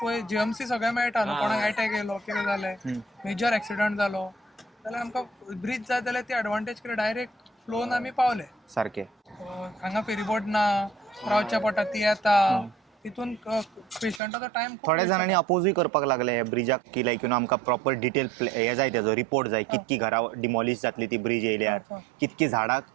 पळय जीएमसी सगळें मेळटा न्हू. कोणाक अटॅक येयलो कितें जालें मेजर एक्सिडंट जालो जाल्यार आमकां ब्रिज जाय जाल्यार ती एडवांटेज कितें डायरेक्ट फ्लोन आमी पावले सारकें. हांगा फेरीबोट ना रावच्या पडटा ती येता तितून पेशंटाचो टायम थोड्या जाणांनी अपोजूय करपाक लागले ह्या ब्रिजाक की लायक यू नो आमकां प्रॉपर डिटेल हे जाय तेजो रिपोर्ट जाय कितकी घरां डिमॉलिश जातली ती ब्रिज येयल्यार कितकी झाडां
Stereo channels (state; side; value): drops out; left; at 14.2 s